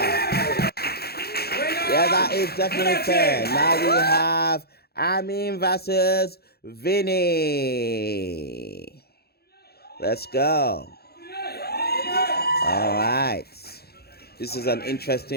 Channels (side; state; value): right; late; 0.46 ms